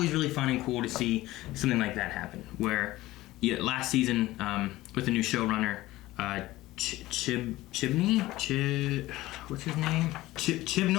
really fun and cool to see something like that happen, where last season, with the new showrunner, Chibnall? What's his name?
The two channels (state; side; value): quieter; right; 17.5 dB